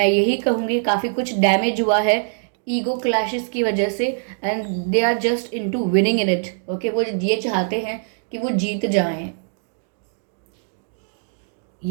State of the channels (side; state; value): left; silent; digital silence